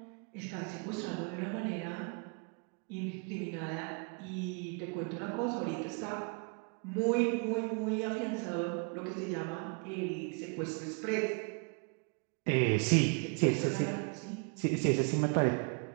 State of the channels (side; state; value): left; quieter; 35.9 dB